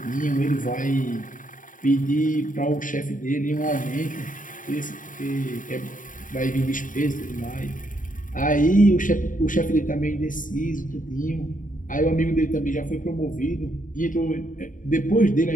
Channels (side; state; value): right; late; 0.38 ms